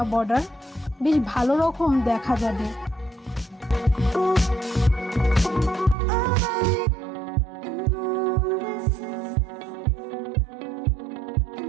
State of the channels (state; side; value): drops out; left; at 6.0 s